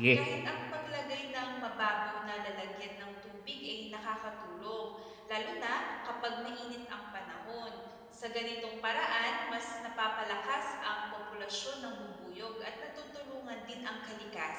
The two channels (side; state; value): both; identical; correlation 1.00